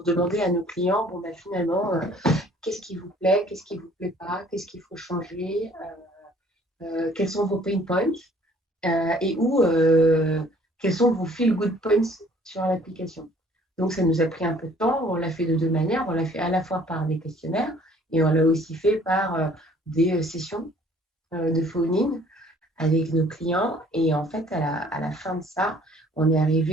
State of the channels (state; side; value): normal; both; correlation 0.56